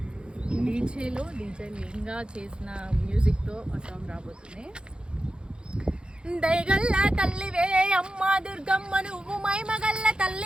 డీజేలో లింగా చేసిన మ్యూజిక్తో ఆ సాంగ్ రాబోతుంది. దయగల్ల తల్లివే అమ్మ దుర్గమ్మ, నువ్వు మైమగల్ల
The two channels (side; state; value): left; late; 0.051 ms